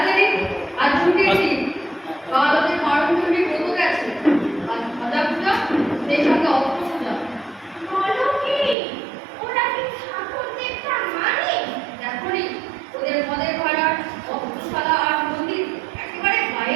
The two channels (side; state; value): left; drops out; at 8.8 s